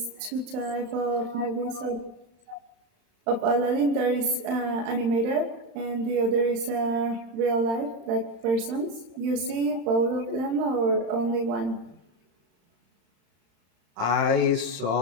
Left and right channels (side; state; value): left; late; 35 ms